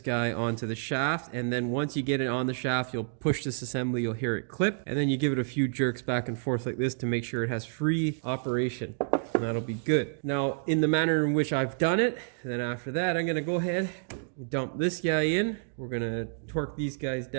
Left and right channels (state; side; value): silent; left; digital silence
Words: guy onto the shaft. And then once you get it on the shaft, you'll push this assembly, you'll hear it clip. And then you give it a few jerks back and forth like this to make sure it has free operation. And that'll be good. Now, in the manner in which I've done it, then after that, I'm going to go ahead and dump this guy in. We're going to torque these guys